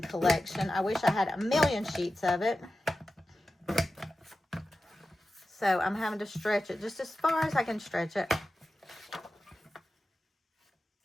collection. I wish I had a million sheets of it. So I'm having to stretch it just as far as I can stretch it.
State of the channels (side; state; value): both; normal; correlation 0.93